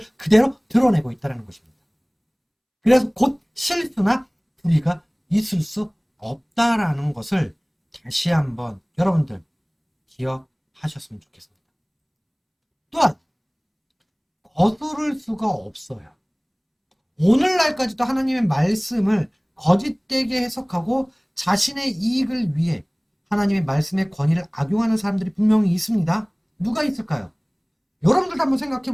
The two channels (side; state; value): both; identical; correlation 1.00